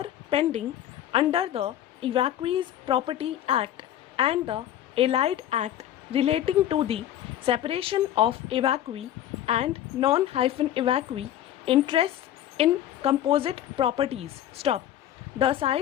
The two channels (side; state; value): right; quieter; 11.8 dB